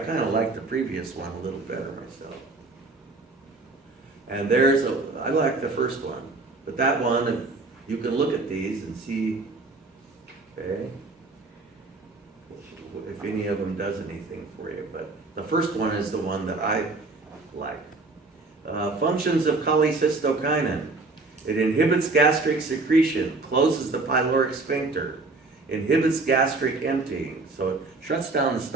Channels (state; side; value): quieter; left; 3.5 dB